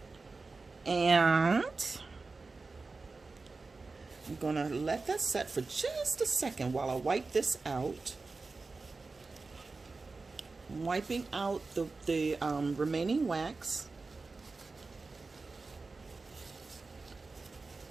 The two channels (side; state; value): left; quieter; 3.9 dB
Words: and I'm gonna let that set for just a second while I wipe this out. I'm wiping out the remaining wax.